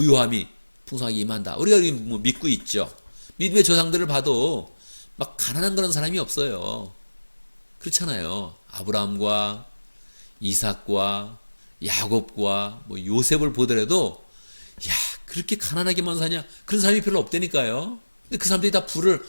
풍성하게 임한다. 우리가 뭐 믿고 있죠. 믿음의 조상들을 봐도 막 가난한 그런 사람이 없어요. 그렇잖아요. 아브라함과 이삭과 야곱과 뭐 요셉을 보더라도 야, 그렇게 가난하게만 사냐? 그런 사람이 별로 없다니까요. 근데 그 사람들이 다 부를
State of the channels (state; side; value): inverted; both; correlation -1.00